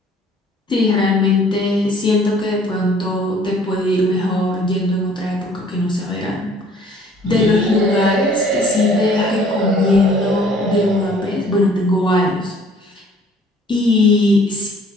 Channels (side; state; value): both; normal; correlation 0.55